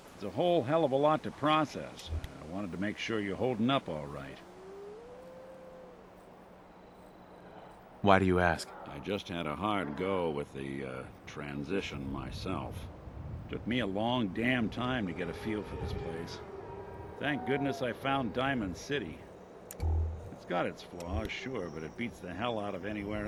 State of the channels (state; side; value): identical; both; correlation 1.00